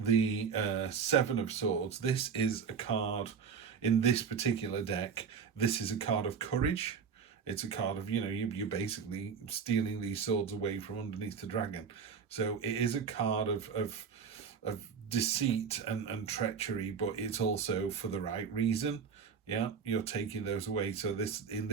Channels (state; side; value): quieter; left; 6.4 dB